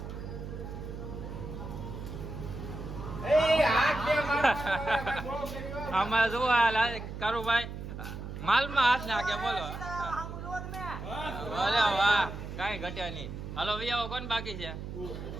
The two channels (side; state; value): right; noise; hum, 8 dB below the sound